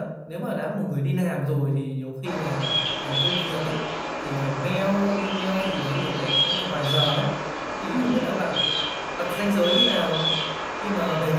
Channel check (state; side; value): identical; both; correlation 1.00